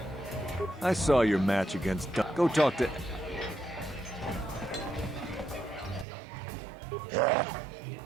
I saw your match against Go talk to...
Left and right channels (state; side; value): drops out; left; at 6.1 s